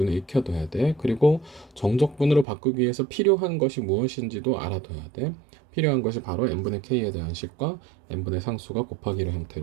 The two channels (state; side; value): drops out; left; at 2.5 s